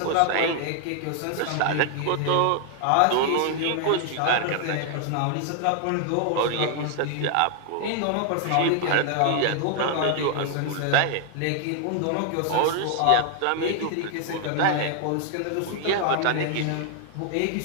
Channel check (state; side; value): different; both; correlation 0.00